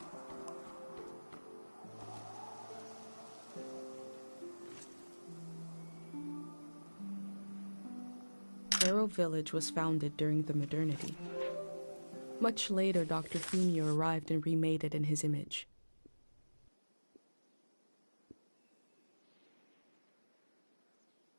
Arrow Village was founded during the modernity. Much later, Dr. Fumio arrived and remade it in his image.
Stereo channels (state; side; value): inverted; both; correlation -1.00